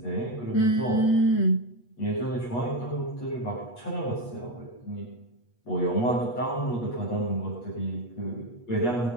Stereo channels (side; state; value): right; late; 8.3 ms